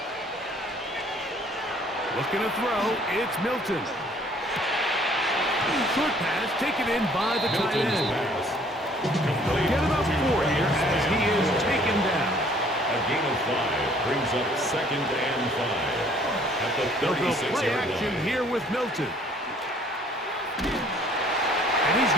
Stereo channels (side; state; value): both; normal; correlation 0.58